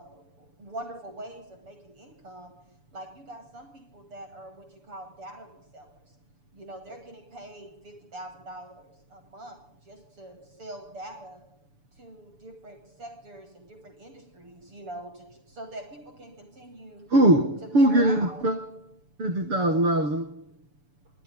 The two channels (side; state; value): left; late; 6.9 ms